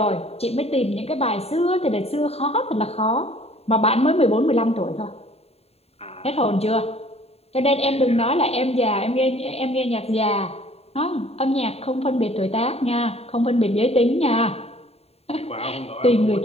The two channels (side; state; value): right; late; 0.30 ms